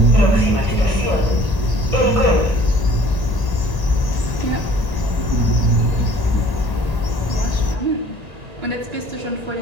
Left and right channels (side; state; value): left; late; 1.8 ms